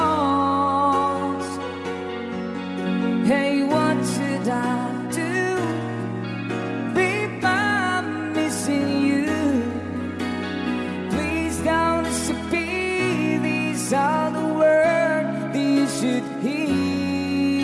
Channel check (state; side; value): identical; both; correlation 1.00